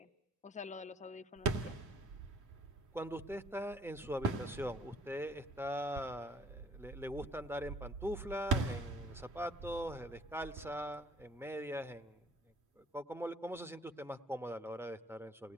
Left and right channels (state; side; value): normal; both; correlation 0.58